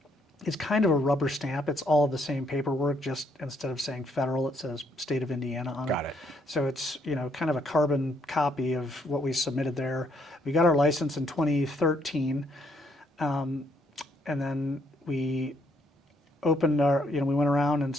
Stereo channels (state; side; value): normal; both; correlation 0.71